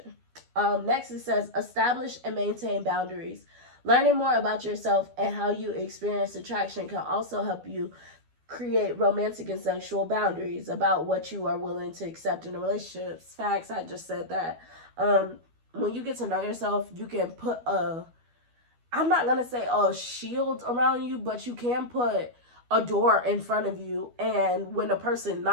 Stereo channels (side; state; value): left; late; 12 ms